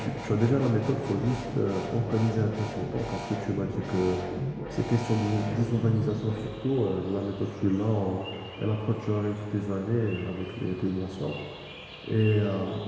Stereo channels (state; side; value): identical; both; correlation 1.00